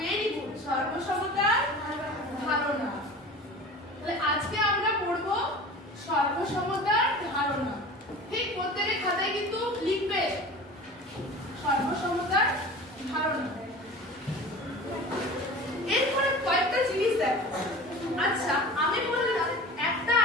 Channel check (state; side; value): normal; both; correlation 0.37